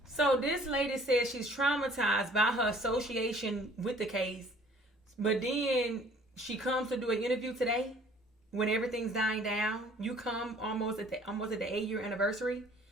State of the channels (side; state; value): both; normal; correlation 0.54